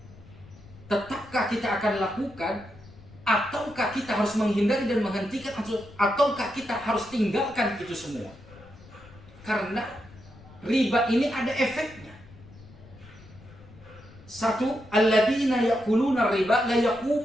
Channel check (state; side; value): noise; left; rumble, 21 dB below the sound